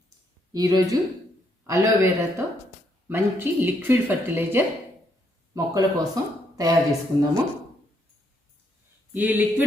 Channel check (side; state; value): both; normal; correlation 0.74